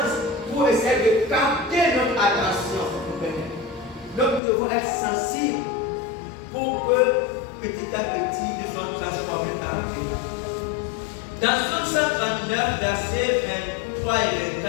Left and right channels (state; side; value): drops out; right; at 4.4 s